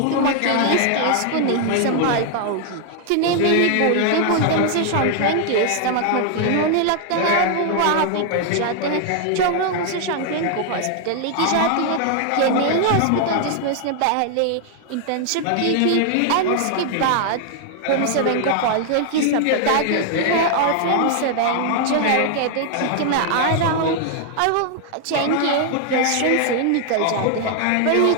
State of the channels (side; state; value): both; different; correlation 0.00